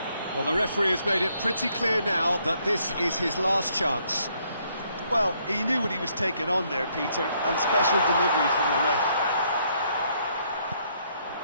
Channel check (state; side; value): inverted; both; correlation -0.70